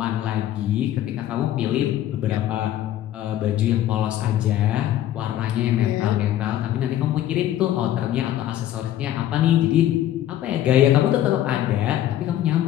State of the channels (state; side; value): quieter; right; 12.4 dB